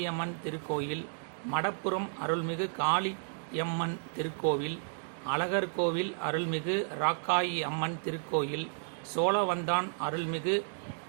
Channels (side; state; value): left; silent; digital silence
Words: திருக்கோயில், மடப்புரம் அருள்மிகு காளியம்மன் திருக்கோவில், அழகர்கோவில் அருள்மிகு ராக்காயி அம்மன் திருக்கோயில், சோழவந்தான் அருள்மிகு